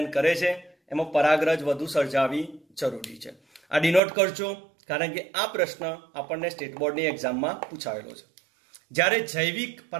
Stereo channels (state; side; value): drops out; left; at 4.0 s